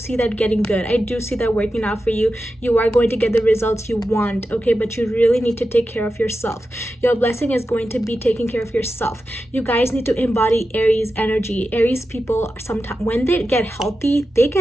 that getting good. I do see that working out for you. You are going to get the results you want, okay? But you really need to take care of yourself. Your blessing is going to be taking care of yourself. You guys need to embody Aries energy. Aries people, sometimes when they get healthy,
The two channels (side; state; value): both; normal; correlation 0.91